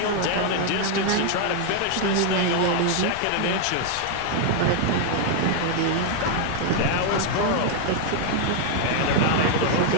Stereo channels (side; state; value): both; different; correlation 0.00